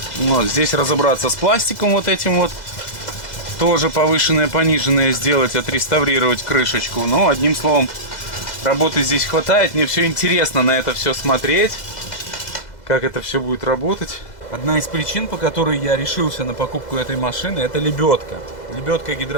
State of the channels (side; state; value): right; late; 2.0 ms